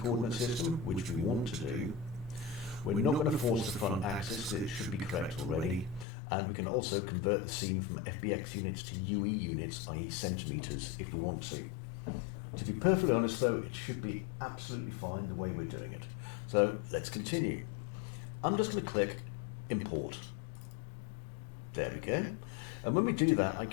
system, which we want to do. We're not going to force the front axis, it should be correct already. And we can also convert the scene from FBX units to UE units, i.e. centimetres, if we want to. To be perfectly honest though, it should be absolutely fine the way we're doing it. So let's continue. I'm just going to click Import. There we go. And when we do that, I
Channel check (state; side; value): drops out; right; at 6.1 s